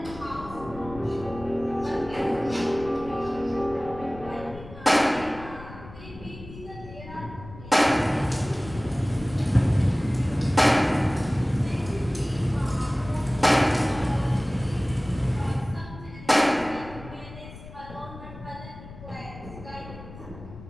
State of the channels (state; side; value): noise; left; rumble, 15 dB below the sound